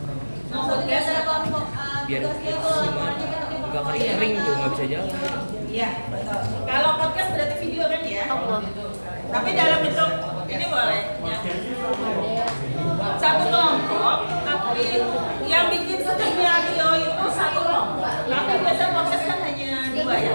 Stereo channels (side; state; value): both; inverted; correlation -1.00